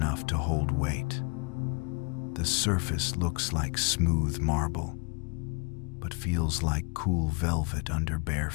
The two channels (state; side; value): quieter; right; 34.5 dB